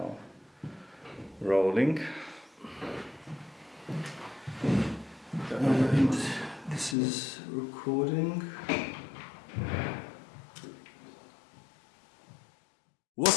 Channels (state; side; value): drops out; right; at 7.0 s